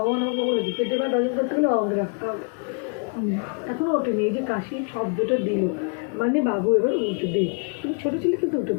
আমাকে বলেছি পেটে ভাত হজম করতে গেলে আমাকে রাখতে হবে। এখনও ওঠেনি, এই যে কাশির শব্দটা দিল মানে বাবু এবার উঠে দেয়। কিন্তু ছোটো ছেলে কিন্তু উঠে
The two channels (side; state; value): right; quieter; 39.6 dB